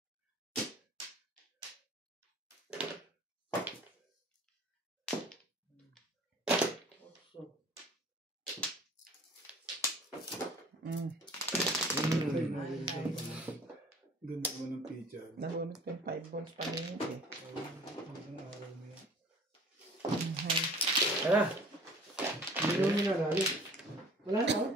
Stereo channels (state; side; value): normal; both; correlation 0.48